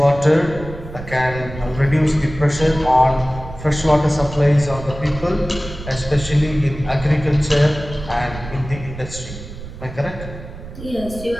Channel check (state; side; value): noise; right; rumble, 12 dB below the sound